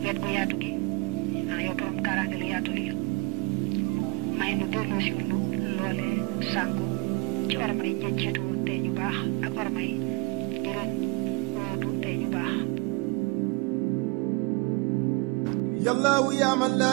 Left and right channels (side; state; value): left; quieter; 27.5 dB